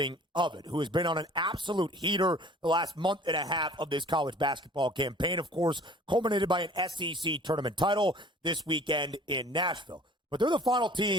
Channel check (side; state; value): both; normal; correlation 0.49